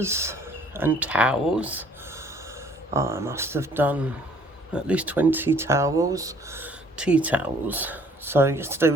and towels. I must have done at least 20 towels, tea towels. So yesterday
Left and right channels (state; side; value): normal; both; correlation 0.58